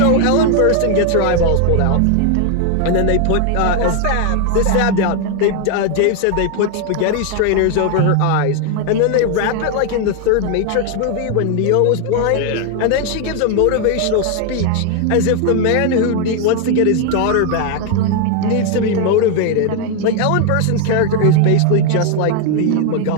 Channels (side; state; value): both; different; correlation 0.01